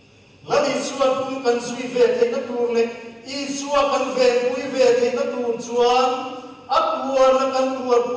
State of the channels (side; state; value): both; identical; correlation 1.00